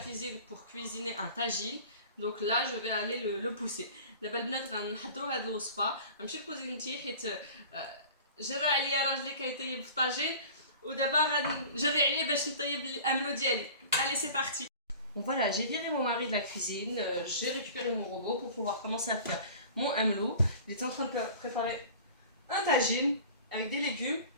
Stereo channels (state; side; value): inverted; both; correlation -0.42